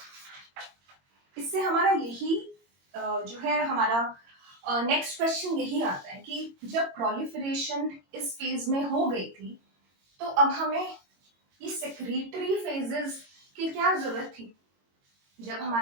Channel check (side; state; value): left; late; 22 ms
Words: इससे हमारा यही जो है हमारा नेक्स्ट क्वेश्चन यही आता है कि जब प्रोलिफरेशन इस फेज में हो गई थी तो अब हमें ये सेक्रेटरी फेजेस की क्या जरूरत थी. जब